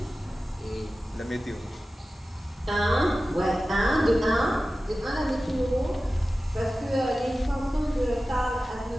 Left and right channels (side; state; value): both; normal; correlation 0.95